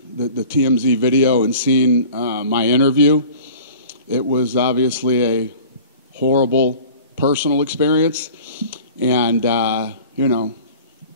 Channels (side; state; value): both; inverted; correlation -0.44